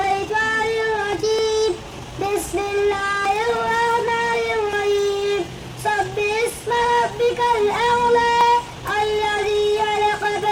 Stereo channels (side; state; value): both; identical; correlation 1.00